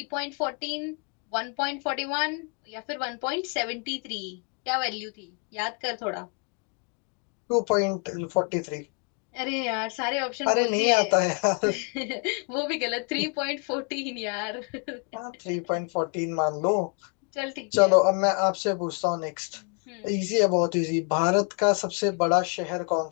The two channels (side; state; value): right; quieter; 36.9 dB